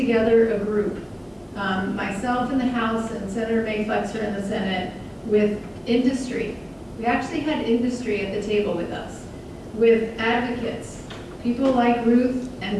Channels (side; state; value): both; identical; correlation 1.00